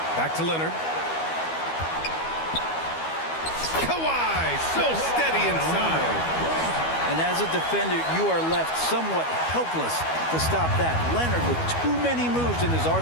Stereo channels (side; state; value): right; late; 12 ms